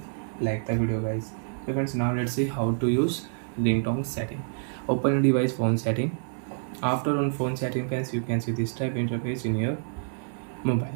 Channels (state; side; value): silent; left; digital silence